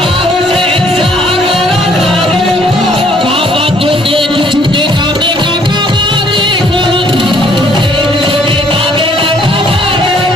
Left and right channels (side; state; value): both; normal; correlation 0.62